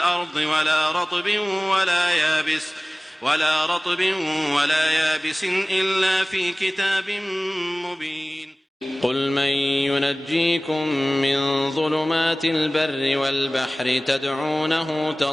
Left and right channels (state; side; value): normal; both; correlation 0.98